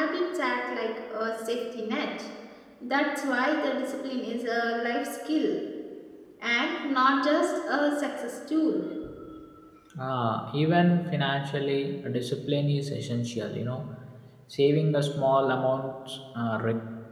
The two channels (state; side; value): identical; both; correlation 1.00